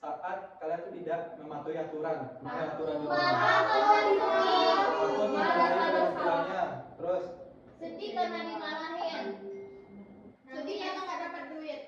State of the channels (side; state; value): both; identical; correlation 1.00